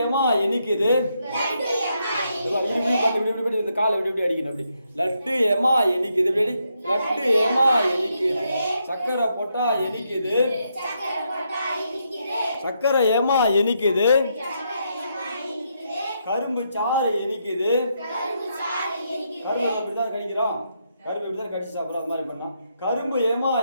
ஏமா இனிக்குது. இந்த காலை இப்படி அடிக்கணும். அப்படி லட்டு ஏமா இனிக்குது. இப்படி லட்டு ஏமா இனிக்குது. சக்கரை போட்டா இனிக்குது. சக்கரை ஏமா இனிக்குது. கரும்பு சாறு இனிக்குது. கரும்பு இப்படிதான் கடிக்கிறோம். கரும்பு இப்படிதான் கடிச்சு சாப்பிட்றோம். அது மாதிரி பண்ணலாம். கரும்பு ஏமா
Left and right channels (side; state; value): both; inverted; correlation -0.79